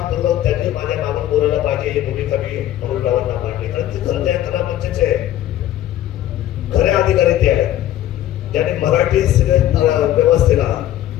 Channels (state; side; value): quieter; right; 12.9 dB